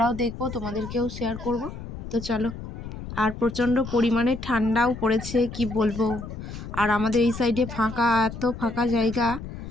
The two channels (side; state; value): left; noise; rumble, 10 dB below the sound